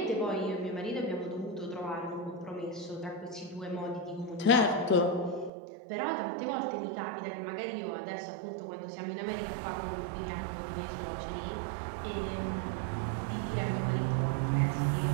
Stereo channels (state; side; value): drops out; left; at 5.5 s